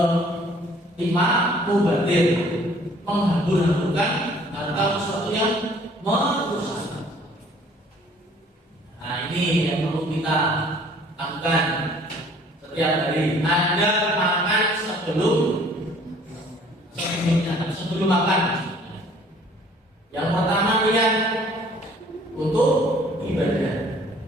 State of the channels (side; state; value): both; normal; correlation 0.56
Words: kelima, mubazir, menghambur-hamburkan atau sesuatu yang merusak. Nah, ini yang perlu kita lakukan setiap hari. Anda makan sebelum makan. Yang pertama niat untuk ibadah.